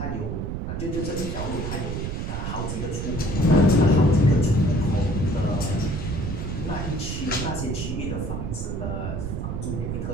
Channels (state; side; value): noise; right; rumble, 3 dB below the sound